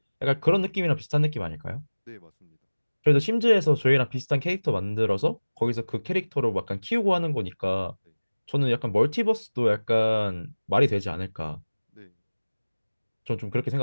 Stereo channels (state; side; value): inverted; both; correlation -1.00